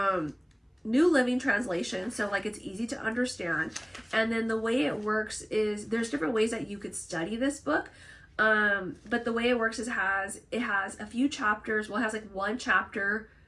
New Living Translation, so like it's easy to understand. And then the way it works is there's different ways that you could study this book. But the way it works is it has a few chapters. Well, it has like one chapter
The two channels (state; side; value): identical; both; correlation 1.00